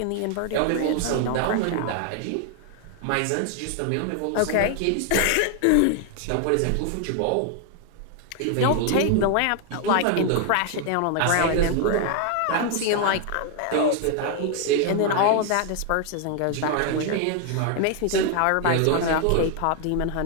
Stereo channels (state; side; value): different; both; correlation 0.00